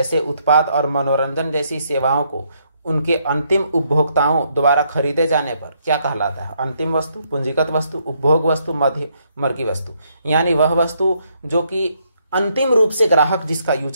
उत्पाद और मनोरंजन जैसी सेवाओं को उनके अंतिम उपभोक्ताओं द्वारा खरीदे जाने पर क्या कहलाता है? अंतिम वस्तु, पूंजीगत वस्तु, उपभोग वस्तु, मध्यवर्गी वस्तु। यानी वह वस्तु जो कि अंतिम रूप से ग्राहक जिसका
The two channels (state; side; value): inverted; both; correlation -0.73